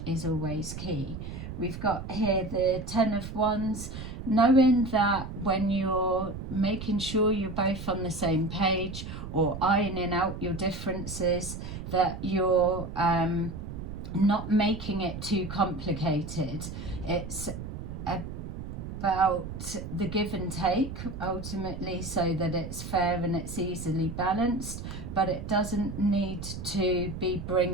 is always key. We've got here the Ten of Wands, knowing that when you're making sure you're both on the same page, or ironing out your differences, that you're not making it too complicated. It's about the give and take ultimately, so that it's fair and it's easily balanced, but it doesn't need to be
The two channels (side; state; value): right; noise; rumble, 8 dB below the sound